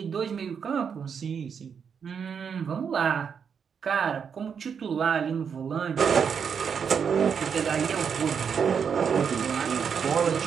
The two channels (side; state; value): left; quieter; 6.8 dB